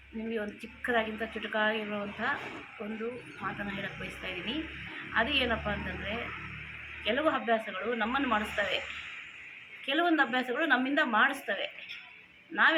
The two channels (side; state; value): both; identical; correlation 1.00